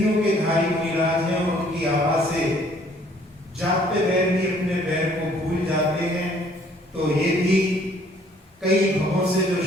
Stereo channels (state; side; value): normal; both; correlation 0.60